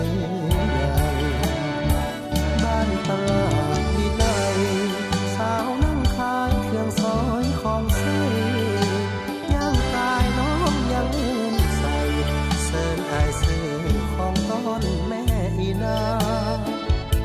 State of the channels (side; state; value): both; identical; correlation 1.00